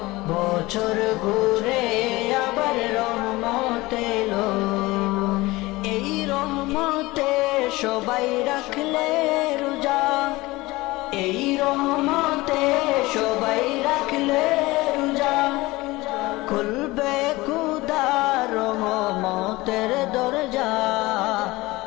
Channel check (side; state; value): right; quieter; 20.5 dB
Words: বছর ঘুরে আবার রহমত এলো। এই রহমতে সবাই রাখলে রোজা, এই রহমতে সবাই রাখলে রোজা। খুলবে খুদার রহমতের দরজা,